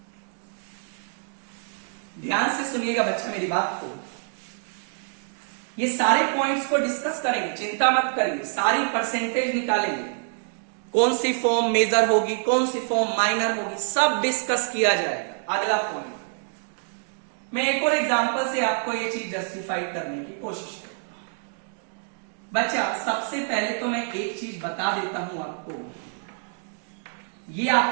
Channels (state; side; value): silent; left; 60 dB below the other